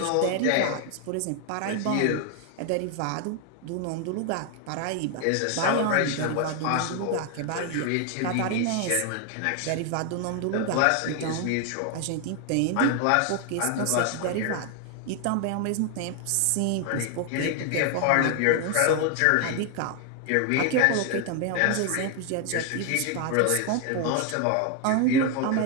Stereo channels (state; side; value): different; both; correlation 0.01